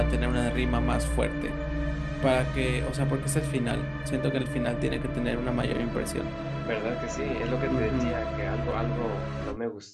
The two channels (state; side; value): identical; both; correlation 1.00